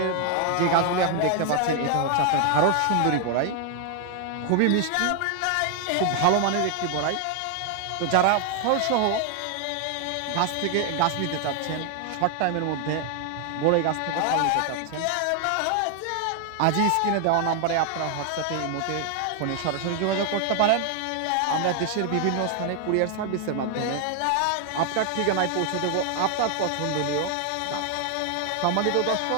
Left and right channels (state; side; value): different; both; correlation 0.00